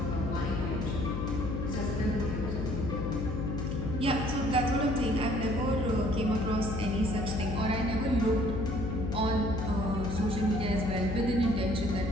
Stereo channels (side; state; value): left; noise; hum, 2 dB below the sound